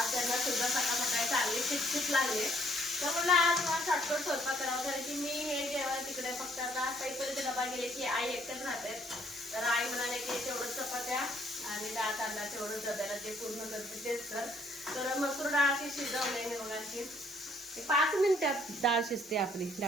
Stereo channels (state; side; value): normal; both; correlation 0.64